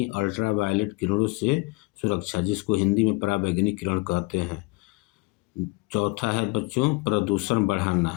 अल्ट्रावायलेट किरणों से सुरक्षा, जिसको हिंदी में पराबैंगनी किरण कहते हैं। चौथा है बच्चों प्रदूषण बढ़ाना।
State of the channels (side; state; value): right; quieter; 25.5 dB